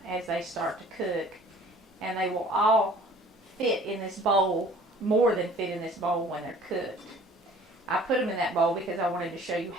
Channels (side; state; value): both; normal; correlation 0.50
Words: as they start to cook, and they will all fit in this bowl more than fit in this bowl when they're cooked. I put them in that bowl because I wanted to show you